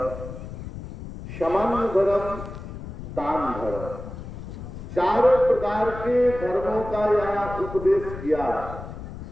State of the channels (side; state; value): left; noise; rumble, 10 dB below the sound